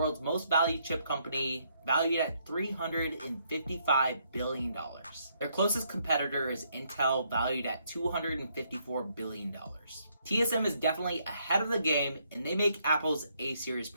most valued chip company, valued at $355 billion. Their closest competitor is Intel, valued at $254 billion. TSM is definitely ahead of the game, and they make Apple's A-series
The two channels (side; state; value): both; inverted; correlation -0.72